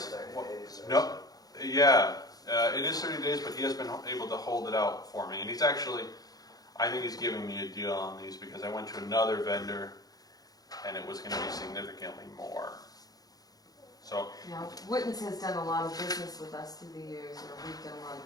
30 days or No, yeah, it is 30 days, but he has been able to hold it out for me. And he's actually, I think he's giving me a deal on these because I went to another vendor and it was going to be significantly more. So, Yeah, Witten's has done a lot of business with us through the years, or we've done a lot of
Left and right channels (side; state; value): right; late; 0.18 ms